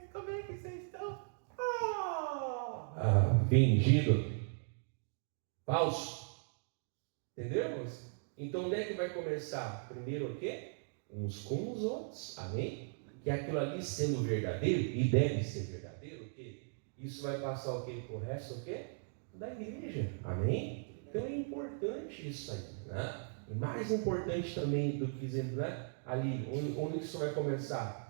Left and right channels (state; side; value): silent; left; digital silence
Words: como é que vocês estão? Fingido. Falso. Entendemos? Então onde é que vai começar? Primeiro o quê? Uns com os outros. Amém? Que aquilo ali sendo verdadeiro, e deve ser verdadeiro, o quê? Isso vai passar o quê? Pro resto o quê? Da igreja. Amém? Então é importante isso aí, né? E mais importante também do que dizendo, né? Ali, onde isso vai